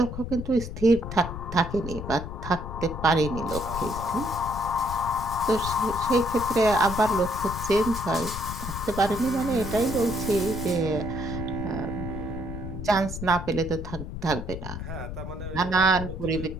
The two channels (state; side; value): noise; left; rumble, 7 dB below the sound